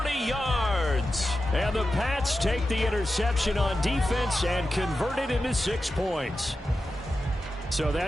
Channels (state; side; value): normal; both; correlation 0.91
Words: yards. And the Pats take the interception on defense and convert it into 6 points. So